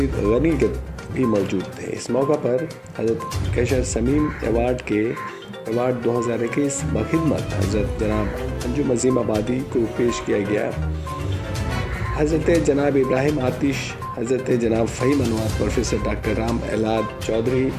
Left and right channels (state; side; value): identical; both; correlation 1.00